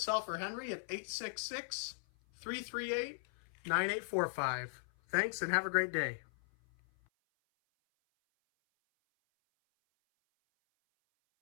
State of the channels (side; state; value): right; silent; 52 dB below the other